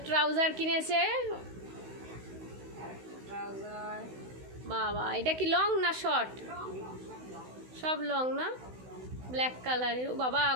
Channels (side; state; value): left; late; 16 ms